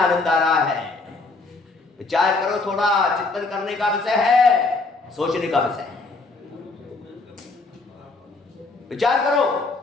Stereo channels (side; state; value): right; quieter; 3.6 dB